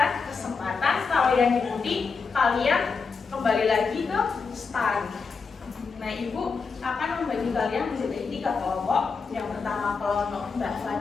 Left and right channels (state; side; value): quieter; right; 5.0 dB